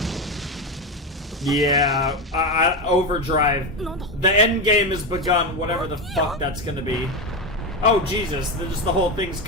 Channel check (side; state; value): both; normal; correlation 0.14